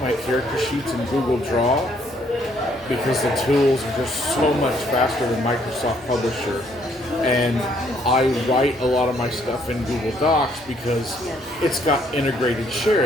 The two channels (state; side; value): normal; both; correlation 0.67